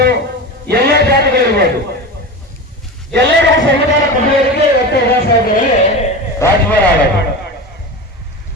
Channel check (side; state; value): both; normal; correlation 0.26